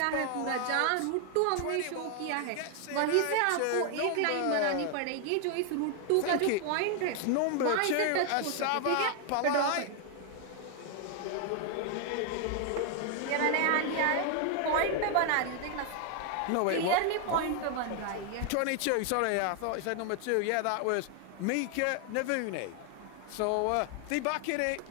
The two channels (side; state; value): both; different; correlation 0.00